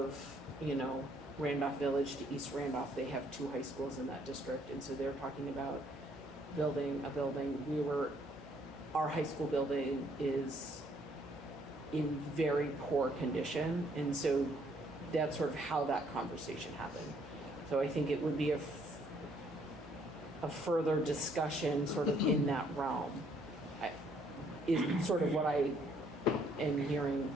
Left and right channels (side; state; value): both; normal; correlation 0.66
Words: Randolph Village to East Randolph, they have two high schools in that district. And so they're talking about building a building. Our high school building is in very poor condition. And so that's sort of how that conversation happened. So I think it would be a further discussion sort of in that realm. Is sort of what I am hearing